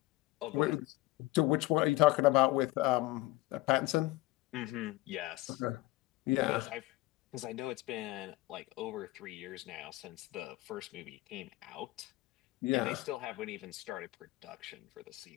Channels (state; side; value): quieter; right; 18.6 dB